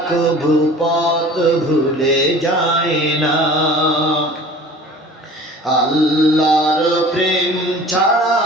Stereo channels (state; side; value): normal; both; correlation 0.43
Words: কভু পথ ভুলে যায় না। আল্লাহর প্রেম ছাড়া